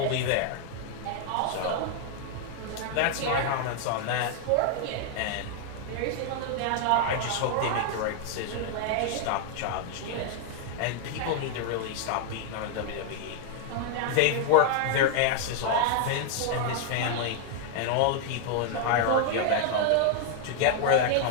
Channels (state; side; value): different; both; correlation 0.00